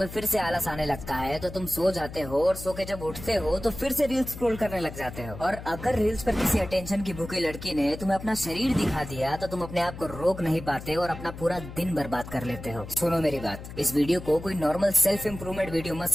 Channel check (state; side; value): noise; left; hum, 12 dB below the sound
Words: फिर से आलस आने लगता है तो तुम सो जाते हो, और सो के जब उठते हो तो फिर से रील्स स्क्रॉल करने लग जाते हो। और अगर रील्स पर किसी अटेंशन की भूखी लड़की ने तुम्हें अपना शरीर दिखा दिया तो तुम अपने आप को रोक नहीं पाते और अपना पूरा दिन बर्बाद कर लेते हो। सुनो मेरी बात, इस वीडियो को कोई नॉर्मल सेल्फ इम्प्रूवमेंट वीडियो मत